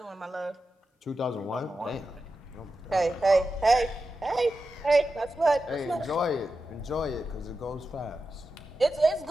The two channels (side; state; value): both; normal; correlation 0.90